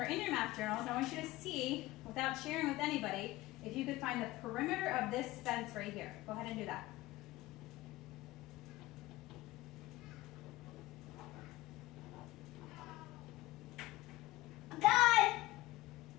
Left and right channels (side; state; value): right; quieter; 18.1 dB